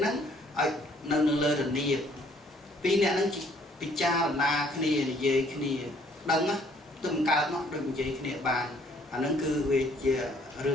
្នឹងឲ្យនៅលើរនាបពីរអ្នកហ្នឹងពិចារណាគ្នានិយាយគ្នាដឹងណាទៅមិនកើតមកដូចនិយាយគ្នាបានអាហ្នឹងគឺវាជារឿ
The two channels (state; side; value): normal; both; correlation 0.62